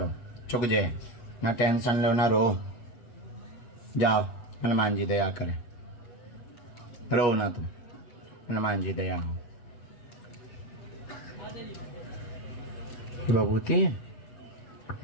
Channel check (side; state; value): right; late; 8.3 ms